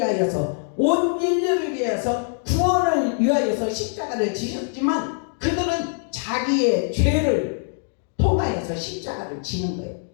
온 인류를 위해서 구원을 위하여서 십자가를 지셨지만 그들은 자기의 죄를 통하여서 십자가를 지는 거예요.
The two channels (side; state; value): right; silent; 60 dB below the other